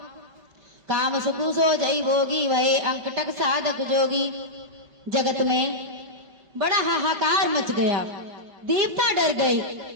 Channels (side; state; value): left; late; 5.3 ms